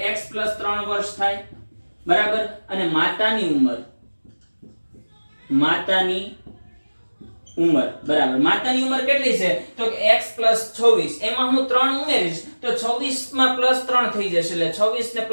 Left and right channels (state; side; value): inverted; both; correlation -1.00